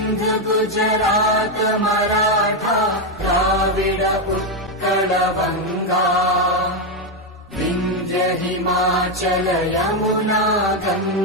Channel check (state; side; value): normal; both; correlation 0.05